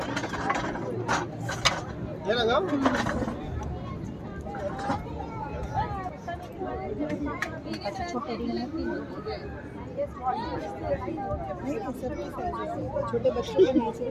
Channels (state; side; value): identical; both; correlation 1.00